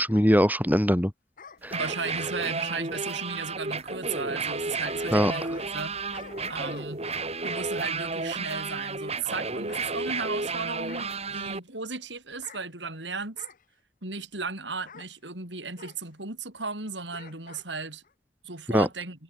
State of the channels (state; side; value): normal; both; correlation 0.48